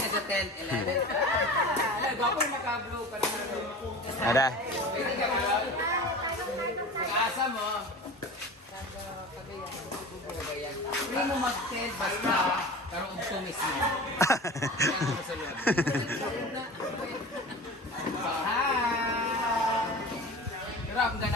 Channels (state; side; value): normal; both; correlation 0.35